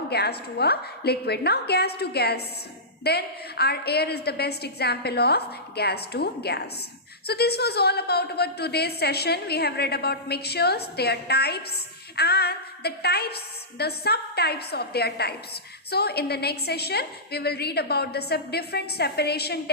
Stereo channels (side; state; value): both; normal; correlation -0.16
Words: gas to a liquid. Now gas to gas. Then our air is the best example of gas to gas. So this was all about our today's session. We have read about mixtures, their types, and the subtypes of their types. So in the next session, we will read about the different separation